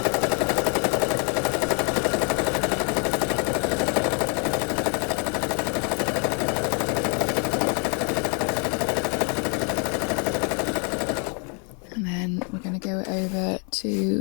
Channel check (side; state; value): right; quieter; 36.9 dB